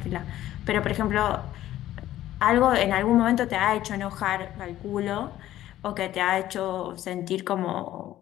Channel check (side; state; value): right; quieter; 13.6 dB